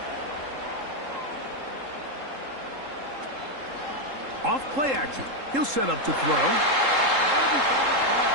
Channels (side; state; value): left; late; 3.7 ms